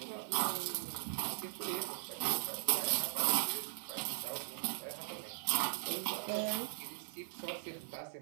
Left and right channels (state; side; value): silent; left; 52 dB below the other